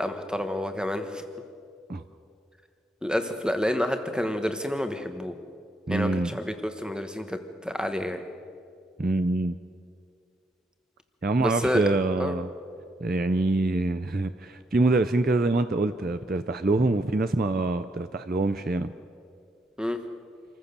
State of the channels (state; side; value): normal; both; correlation 0.77